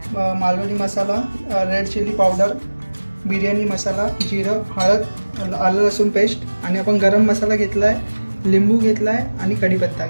मालवणी मसाला, रेड चिली पावडर, बिर्याणी मसाला, जिरं, हळद, आलं लसूण पेस्ट आणि आपण गरम मसाला घेतलाय, लिंबू घेतलाय आणि कढीपत्ता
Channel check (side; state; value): both; inverted; correlation -1.00